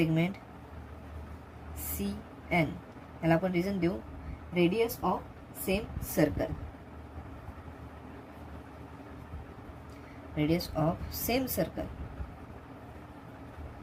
CN. याला आपण रिझन देऊ, radius of same circle. Radius of same circle.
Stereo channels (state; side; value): identical; both; correlation 1.00